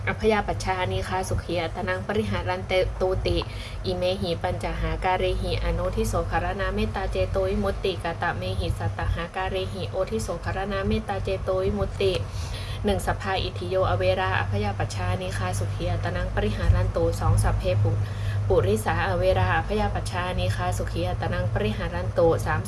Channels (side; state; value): both; identical; correlation 1.00